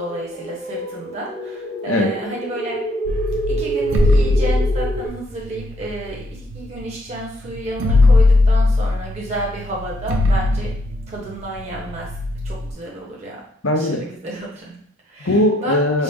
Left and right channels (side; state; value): both; normal; correlation 0.71